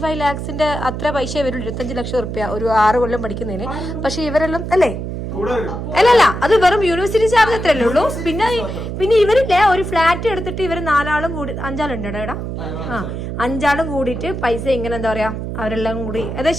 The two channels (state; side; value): noise; right; hum, 5 dB below the sound